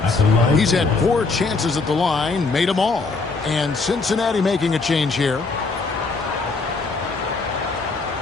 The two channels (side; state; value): right; quieter; 4.0 dB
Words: He's had 4 chances at the line, made them all. And Cincinnati making a change here.